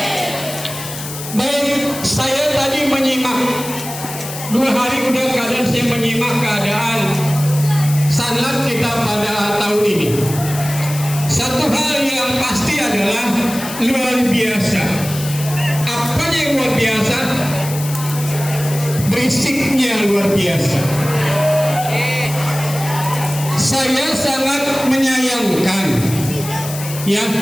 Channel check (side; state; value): left; noise; hiss, 10 dB below the sound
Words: Baik, saya tadi menyimak 2 hari udah keadaan saya menyimak keadaan sanad kita pada tahun ini. Satu hal yang pasti adalah luar biasa. Apa yang luar biasa? Berisiknya luar biasa. Saya sangat menyayangkan, ya,